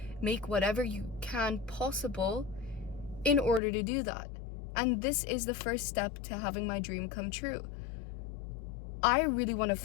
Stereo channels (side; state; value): right; drops out; at 3.6 s